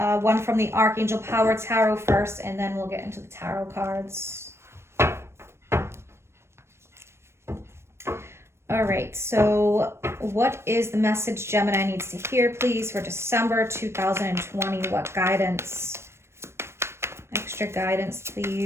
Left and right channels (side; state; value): left; late; 0.13 ms